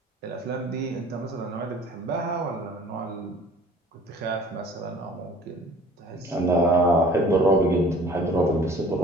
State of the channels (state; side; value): normal; both; correlation 0.50